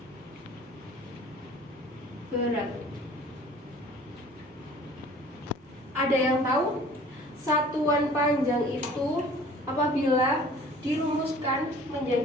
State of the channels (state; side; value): normal; both; correlation 0.49